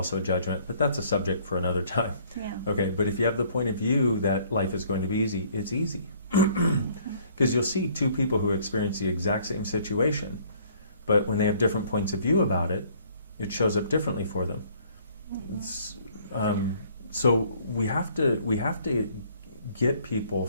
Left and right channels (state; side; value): inverted; both; correlation -0.59